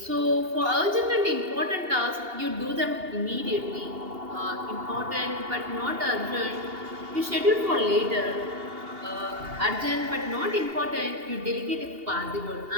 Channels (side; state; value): left; late; 2.8 ms